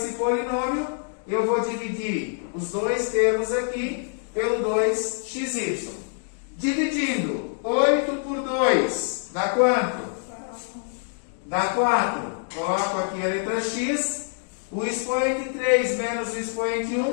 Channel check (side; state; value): right; silent; 61 dB below the other